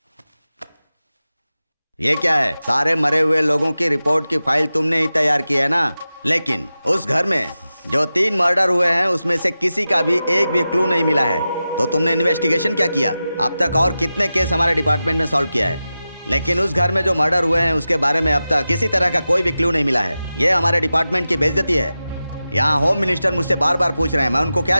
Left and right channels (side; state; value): both; inverted; correlation -0.93